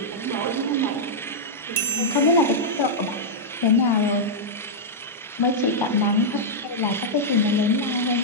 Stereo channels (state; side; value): normal; both; correlation -0.07